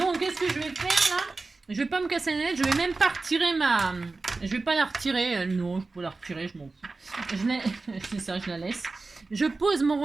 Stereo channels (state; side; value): quieter; left; 3.7 dB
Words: qu'est-ce que je vais faire là? Je vais pas me casser la tête. Je vais même pas retirer ma... Je vais pas la retirer. Non, je peux la retirer. Je m'en fous. C'est ça, je la laisse. Je pose mon